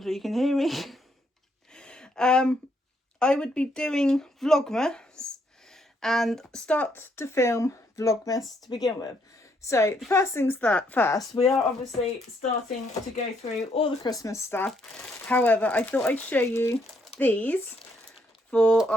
you can hear me, I would be doing Vlogmas and start to film Vlogmas to begin with. So the first things first, we are obviously starting to go through all the Christmas stuff. However, I thought I'd show you these for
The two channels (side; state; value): both; normal; correlation 0.72